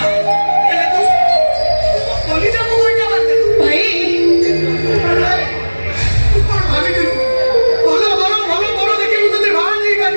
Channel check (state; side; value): inverted; both; correlation -1.00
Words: ହେଲେ ତୁ ମୋ କଲିଜାକୁ ଗୋଇଠା ମାରିଦେଲୁ ଭାଇ ତୁ କଣ ଭାବିଥିଲୁ ଭଲ ଭଲ ଭଲ ଭଲ ଦେଖି ମୁଁ ତତେ ବାହା